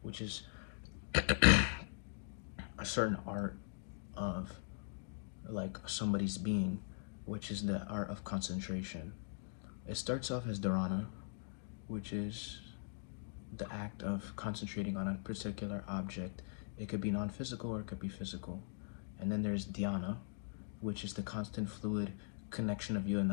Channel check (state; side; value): silent; right; digital silence